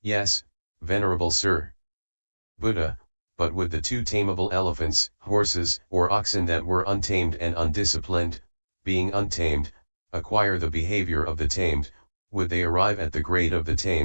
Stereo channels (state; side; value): inverted; both; correlation -1.00